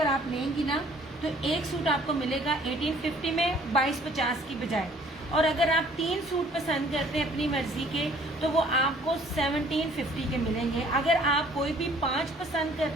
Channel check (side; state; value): both; normal; correlation 0.57